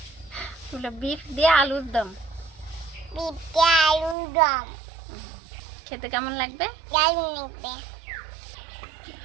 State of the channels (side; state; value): left; drops out; at 4.2 s